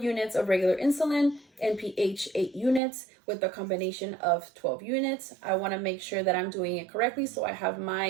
of regular insulin, NPH 8 units with a combination of 12 units. I want to make sure that I'm doing it correctly. So I have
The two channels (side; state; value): left; drops out; at 2.8 s